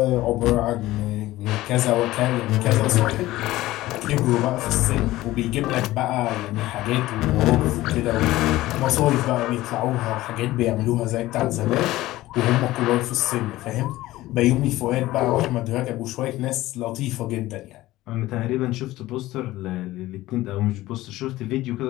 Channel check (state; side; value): quieter; right; 16.9 dB